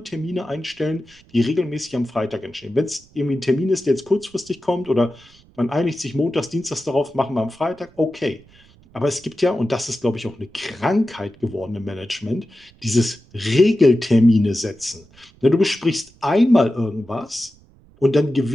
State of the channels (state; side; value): noise; right; rumble, 28 dB below the sound